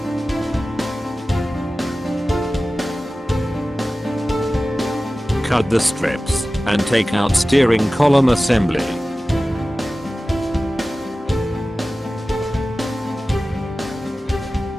Cut the strips and take out steering column assembly.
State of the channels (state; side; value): normal; both; correlation 0.96